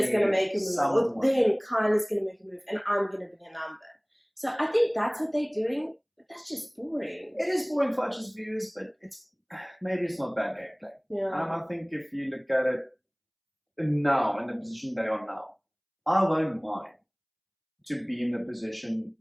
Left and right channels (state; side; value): identical; both; correlation 1.00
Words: going to make a move, or then Kyle is going to make a move, and I'm going to be a number. So I think that's what they're doing, but that's just boring. It is boring for us as viewers, but maybe it's not bad gameplay. Yeah. I think if you look at it now, in the position they are now, I won't mind to be in the position